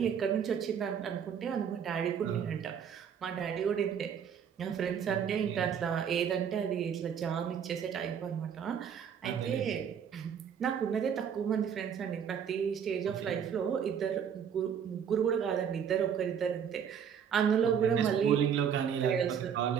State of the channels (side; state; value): left; quieter; 7.9 dB